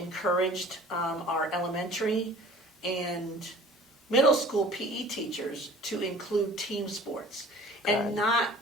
our elementary and middle school PE teachers to include team sports and not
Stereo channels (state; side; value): normal; both; correlation 0.47